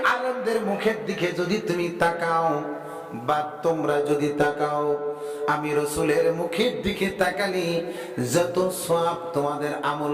আলেমদের মুখের দিকে যদি তুমি তাকাও বা তোমরা যদি তাকাও, আমি রাসূলের মুখের দিকে তাকালি যত সওয়াব তোমাদের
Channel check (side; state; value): both; identical; correlation 1.00